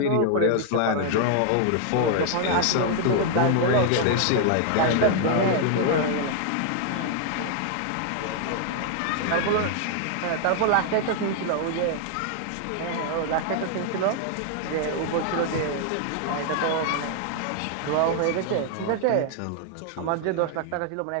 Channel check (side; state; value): both; different; correlation 0.00